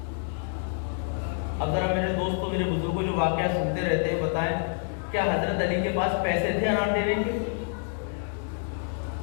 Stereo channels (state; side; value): silent; right; 60 dB below the other